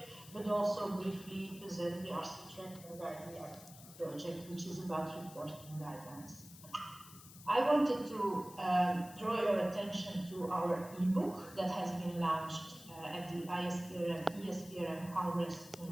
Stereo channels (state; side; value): noise; left; hiss, 18 dB below the sound